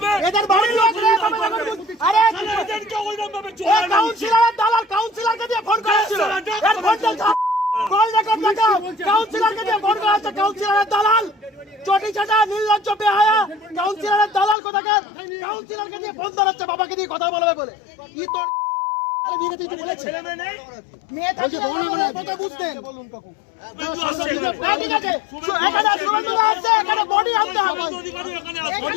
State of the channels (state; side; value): drops out; right; at 14.6 s